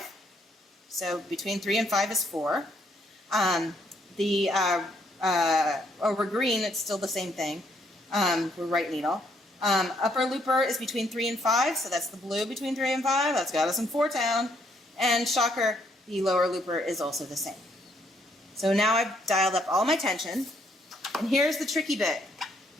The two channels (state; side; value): normal; both; correlation 0.70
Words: So between 3 and 5 is 4. Over green, it's still the same thing. We're right needle. Upper looper is between 3 and 5, so that's the blue between 3 and 5. That's got us in 4-town. And shocker, the lower looper is also the same. So now I've dialed up all my tension. And here's the tricky bit.